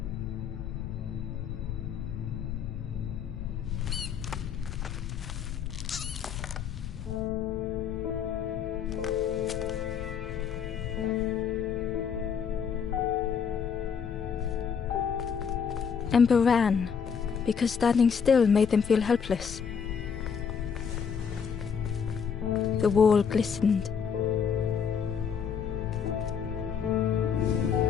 Ember ran, because standing still made them feel helpless. The wall glistened.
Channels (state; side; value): quieter; right; 6.9 dB